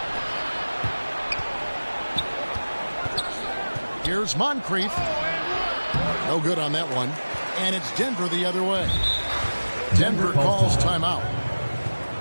Here's Moncrief. No good on that one. And it's Denver the other way. Denver calls timeout.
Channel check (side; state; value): both; inverted; correlation -1.00